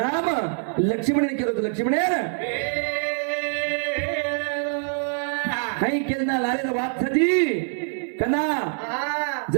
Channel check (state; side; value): silent; left; digital silence